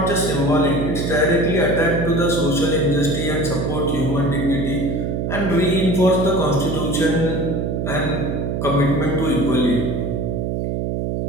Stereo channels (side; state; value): right; noise; hum, 1 dB below the sound